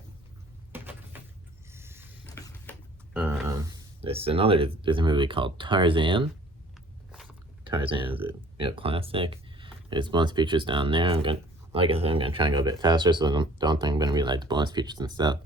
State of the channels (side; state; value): both; normal; correlation 0.52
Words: This is another Disney movie called Tarzan. Tarzan is a classic. There's bonus features down there. Like I said, I'm gonna try and go a bit faster, so I don't think I'm gonna read like the bonus features and stuff.